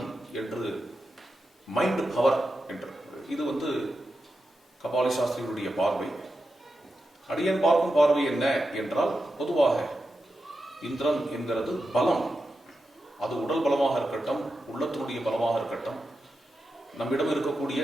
என்று, மைண்ட் பவர் என்று. இது கபாலி சாஸ்திரிகளுடைய பார்வை. அடியன் பார்க்கும் பார்வை என்ன என்றால், பொதுவாக இந்திரன் என்கிறது பலம். அது உடல் பலமாக இருக்கட்டும், உள்ளத்தினுடைய பலமாக இருக்கட்டும், நம்மிடம் இருக்கக்கூடிய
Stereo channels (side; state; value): both; normal; correlation 0.89